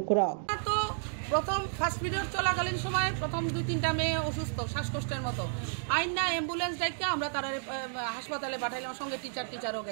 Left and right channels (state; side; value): silent; left; digital silence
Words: প্রথম first period চলাকালীন সময় প্রথম 2-3টা মেয়ে অসুস্থ শ্বাসকষ্টের মতো আইনা ambulance ডাইকা আমরা তারা হাসপাতালে পাঠাইলাম সঙ্গে টিচারও